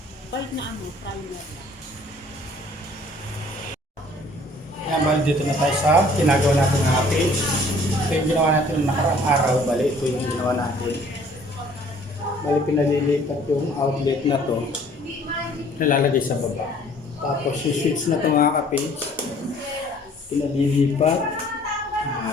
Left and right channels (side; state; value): both; normal; correlation 0.56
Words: Balik na primer. Yan, bali dito na tayo sa ginagawa natin mga ka-page. Ito yung ginawa natin ng nakaraang araw. Bali ito yung ginawa natin. Bali pinalilipat yung outlet na to. Nalalagay sa baba. Tapos yung switch na ito mga ka-page, pinalilipat